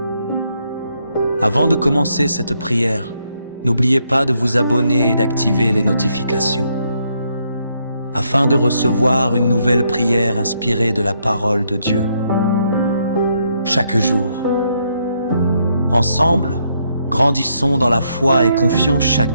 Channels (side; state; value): both; inverted; correlation -0.75